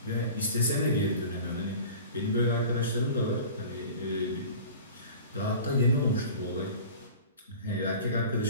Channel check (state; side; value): inverted; both; correlation -0.40